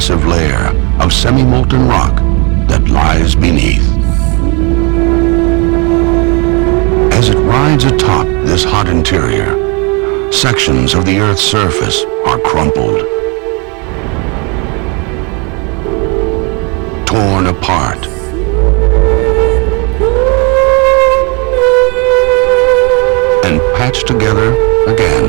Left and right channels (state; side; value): quieter; left; 31.5 dB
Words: layer of semi-molten rock that lies beneath. As it rides atop this hot interior, sections of the Earth's surface are crumpled, torn apart, and patched together